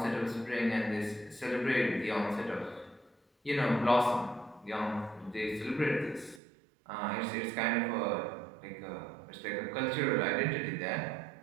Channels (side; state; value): left; drops out; at 6.4 s